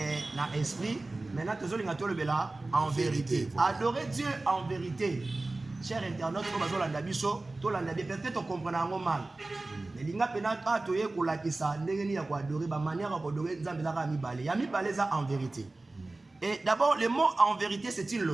un esprit. Maintenant, nous allons le en vérité. Voilà. Adorer Dieu en vérité. Cher internaute, peut-être on comprend mal. Mais il y a en vérité. Et d'abord, le mot en vérité, c'est une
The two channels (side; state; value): left; quieter; 3.1 dB